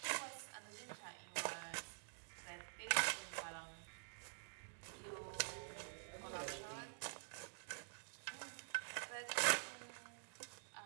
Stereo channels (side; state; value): left; silent; digital silence